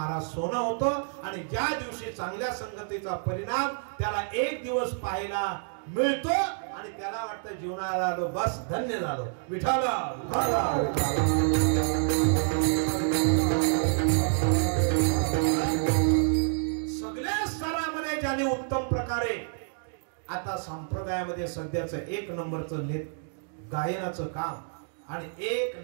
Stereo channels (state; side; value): silent; left; digital silence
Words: सोनं होतं. आणि ज्या दिवशी चांगल्या संगतीचा परिणाम त्याला एक दिवस पाहायला मिळतो आणि त्याला वाटतं जीवनाला आलो बस धन्य झालो. विठाला सगळ्या स्तरामध्ये ज्याने उत्तम प्रकारे आता संप्रदायामध्ये सध्याचं 1 नंबरचं गायनाचं काम आणि 1